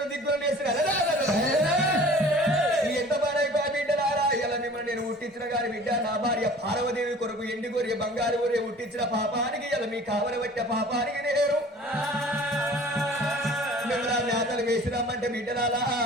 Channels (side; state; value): both; normal; correlation 0.46